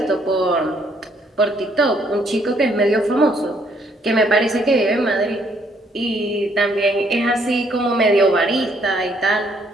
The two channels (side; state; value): both; normal; correlation 0.68